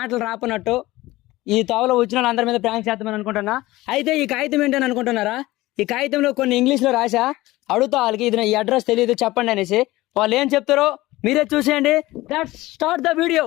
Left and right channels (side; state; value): right; quieter; 18.4 dB